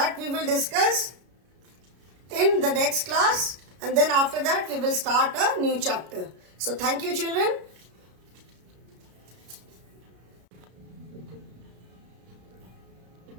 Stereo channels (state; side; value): late; left; 33 ms